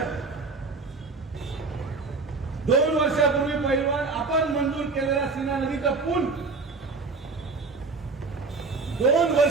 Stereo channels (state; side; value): quieter; left; 4.1 dB